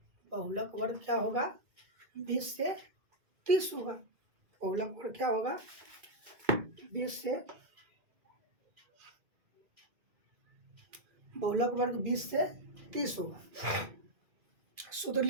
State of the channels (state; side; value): late; left; 2.1 ms